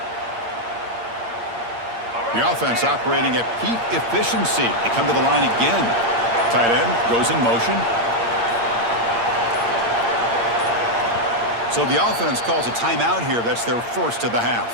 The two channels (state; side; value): late; left; 8.6 ms